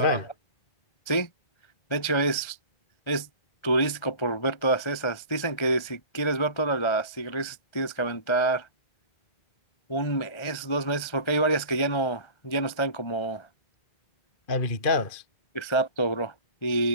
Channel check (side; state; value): right; late; 1.4 ms